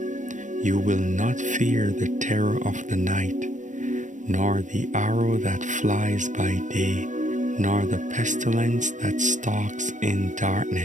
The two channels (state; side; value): late; left; 0.36 ms